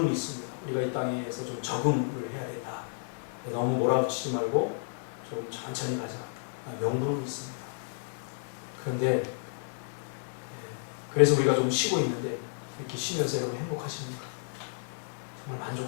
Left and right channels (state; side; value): silent; right; digital silence